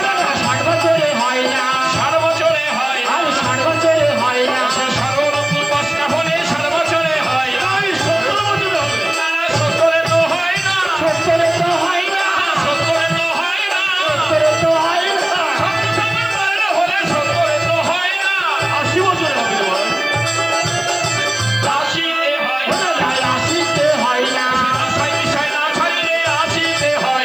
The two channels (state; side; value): noise; left; hiss, 28 dB below the sound